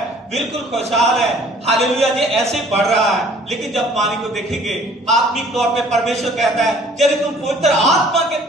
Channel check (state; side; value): normal; both; correlation 0.55